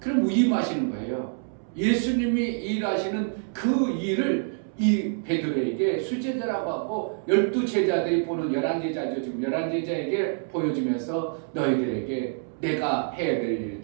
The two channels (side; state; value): left; silent; 61 dB below the other